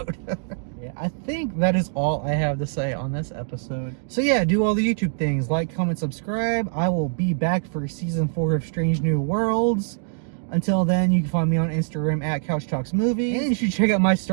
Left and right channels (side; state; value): left; silent; digital silence